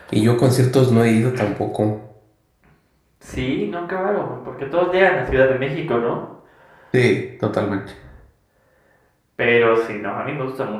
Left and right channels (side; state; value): both; identical; correlation 1.00